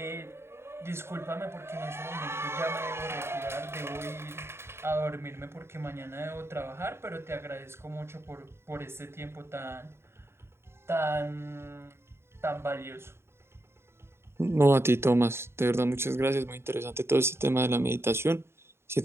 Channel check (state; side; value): late; left; 0.12 ms